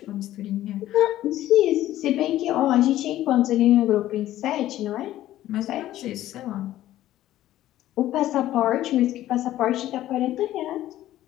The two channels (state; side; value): quieter; right; 13.8 dB